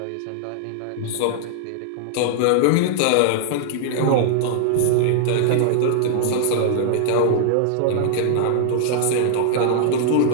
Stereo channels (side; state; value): both; different; correlation -0.01